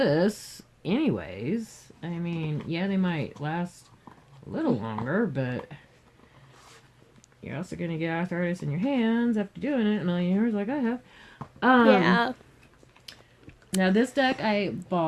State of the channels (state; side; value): identical; both; correlation 1.00